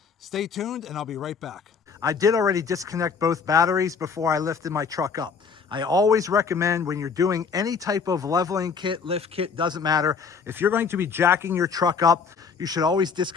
stay tuned and I'll be right back. I did already disconnect both batteries before I lifted my truck up. I always recommend, when you're doing any type of leveling kit, lift kit, doesn't matter, if you're going to be jacking your truck up, you should always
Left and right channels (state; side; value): quieter; right; 5.7 dB